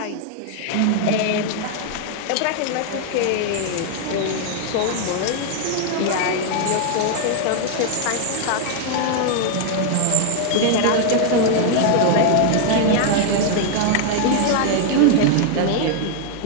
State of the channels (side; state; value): both; different; correlation 0.00